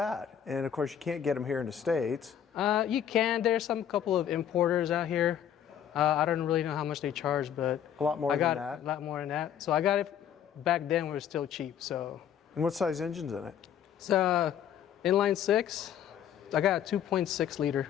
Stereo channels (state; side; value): quieter; right; 9.4 dB